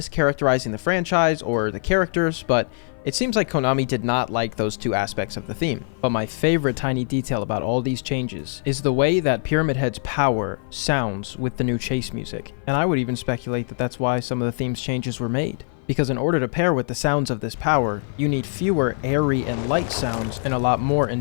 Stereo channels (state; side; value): silent; right; 56 dB below the other